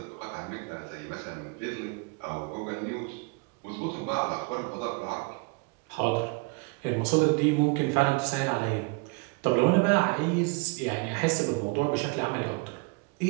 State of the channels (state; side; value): quieter; left; 30.2 dB